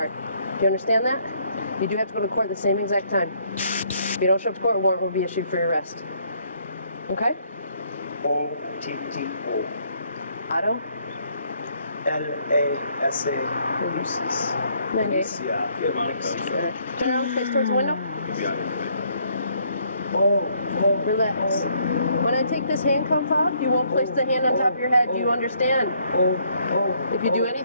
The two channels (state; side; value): inverted; both; correlation -0.68